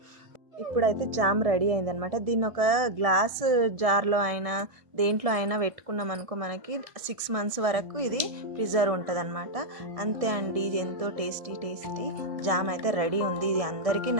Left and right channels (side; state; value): left; late; 1.7 ms